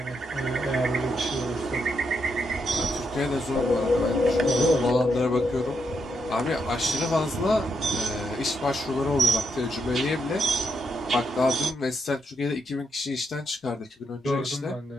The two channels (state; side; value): normal; both; correlation 0.80